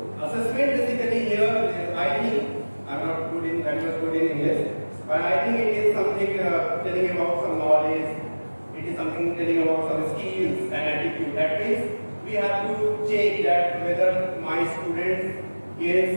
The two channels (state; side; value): inverted; both; correlation -1.00